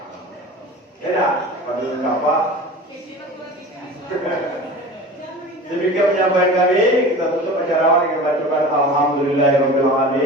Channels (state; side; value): normal; both; correlation 0.37